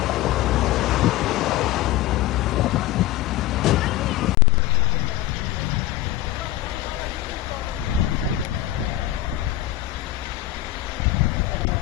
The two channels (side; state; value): right; quieter; 14.5 dB